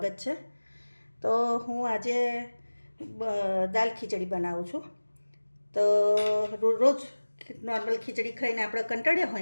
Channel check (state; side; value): inverted; both; correlation -1.00